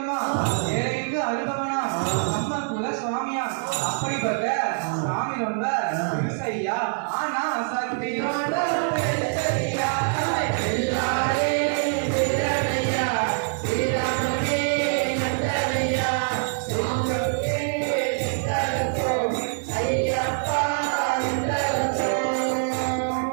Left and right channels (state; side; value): silent; left; 62 dB below the other